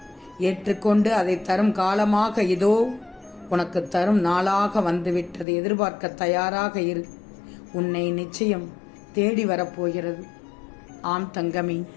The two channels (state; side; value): drops out; right; at 5.5 s